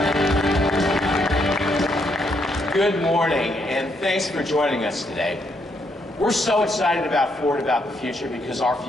Good morning, and thanks for joining us today. We're so excited about Ford, about the future, because our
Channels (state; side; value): normal; both; correlation 0.76